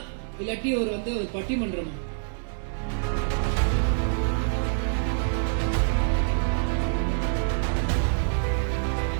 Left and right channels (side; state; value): left; silent; 61 dB below the other